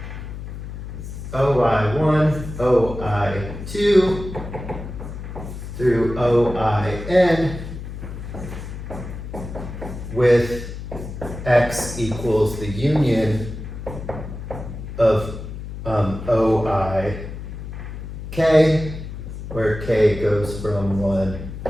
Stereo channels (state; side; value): noise; left; hum, 9 dB below the sound